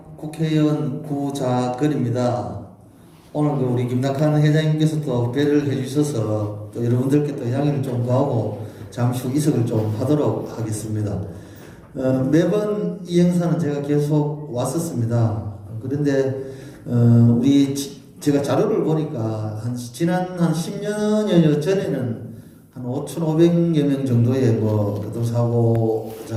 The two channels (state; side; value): identical; both; correlation 1.00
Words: 국회의원 구자근입니다. 오늘 그 우리 김낙한 회장님께서 또 배를 해주셔서 또 여러분들께 또 양해를 좀 구하고 잠시 후 이석을 좀 하도록 하겠습니다. 매번 이 행사는 제가 계속 왔었습니다. 그런데 제가 자료를 보니까 지난 한 10년여 전에는 한 5,500여 명 정도의